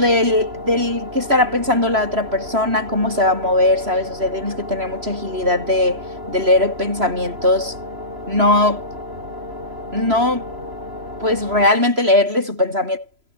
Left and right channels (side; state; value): left; late; 3.0 ms